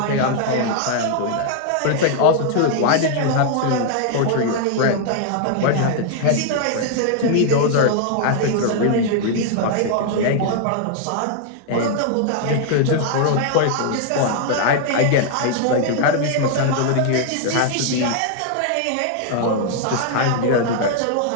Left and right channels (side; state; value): both; different; correlation 0.00